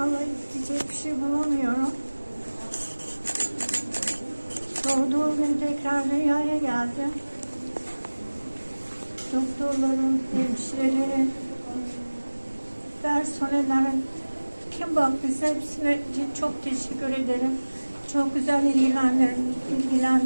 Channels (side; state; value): both; inverted; correlation -1.00